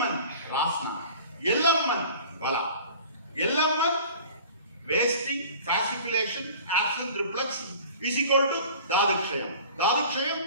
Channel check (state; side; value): inverted; both; correlation -0.44